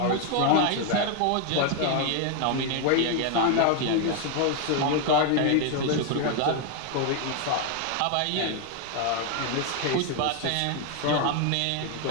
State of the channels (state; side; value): different; both; correlation 0.01